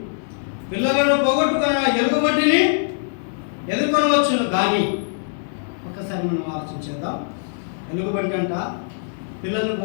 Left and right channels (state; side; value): silent; right; digital silence